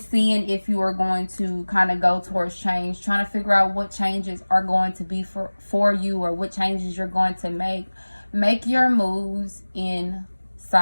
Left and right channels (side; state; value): both; inverted; correlation -1.00